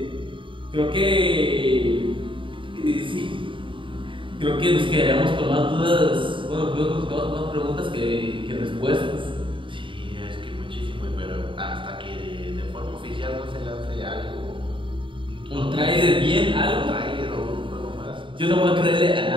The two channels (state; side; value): late; left; 0.24 ms